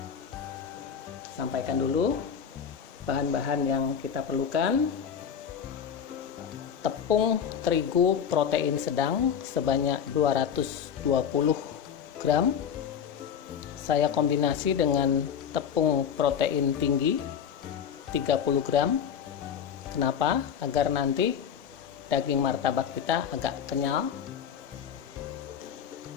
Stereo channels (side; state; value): right; quieter; 7.9 dB